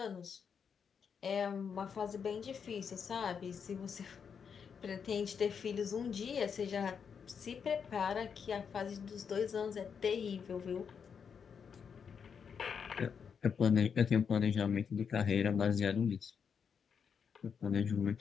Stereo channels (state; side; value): quieter; right; 6.7 dB